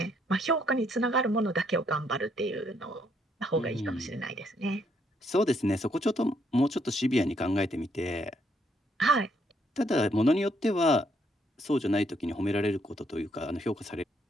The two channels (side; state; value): both; normal; correlation 0.72